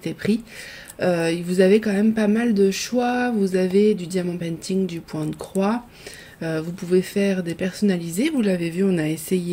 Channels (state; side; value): identical; both; correlation 1.00